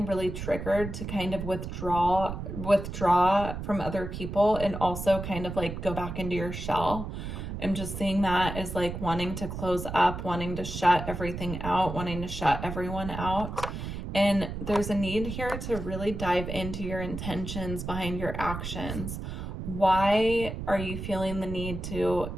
really triggered to kind of withdraw from other people and also kind of like go back into your shell. I'm just seeing that as like wanting to close up, wanting to shut everything out, wanting to shut everyone out. And there's a need here to really dive into your intentions behind your actions. Why are you feeling the need to,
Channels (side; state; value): right; noise; rumble, 7 dB below the sound